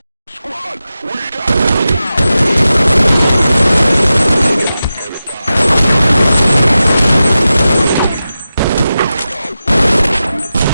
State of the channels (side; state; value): both; inverted; correlation -0.93